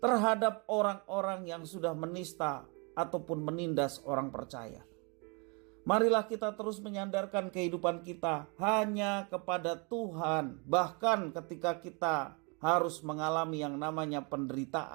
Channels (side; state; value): left; quieter; 32.7 dB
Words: orang-orang yang sudah menista ataupun menindas orang percaya. Marilah kita terus menyandarkan kehidupan kita hanya kepada Tuhan, bahkan ketika kita harus mengalami yang namanya